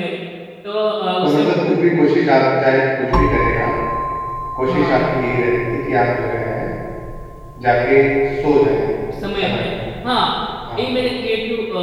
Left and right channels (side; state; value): both; identical; correlation 1.00